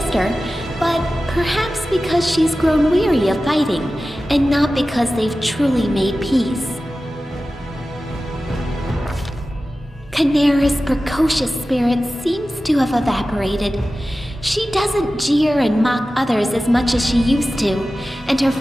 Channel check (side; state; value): both; normal; correlation 0.95